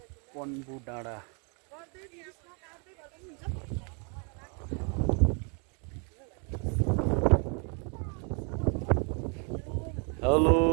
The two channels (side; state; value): left; quieter; 37.4 dB